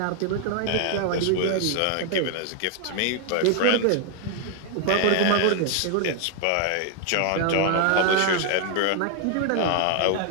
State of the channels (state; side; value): different; both; correlation 0.00